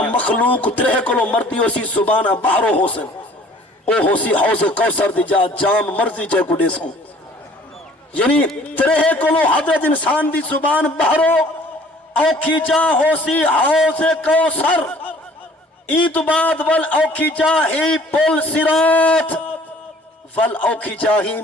مخلوق ترہ کلو مردی ہو سی زبانہ باہرو ہو سن او ہو سی حوض کوثر دی جا جام مرضی جے کو دے سوں یعنی ترہ کلو حضرت انسان دی زبان باہرو اوکھی جا ہو سی حوض کوثر عید بعد ول اوکھی جا ہی پل صراط ول اوکھی جا ہی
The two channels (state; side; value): normal; both; correlation 0.53